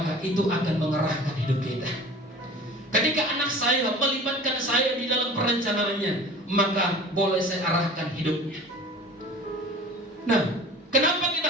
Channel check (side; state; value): both; normal; correlation 0.41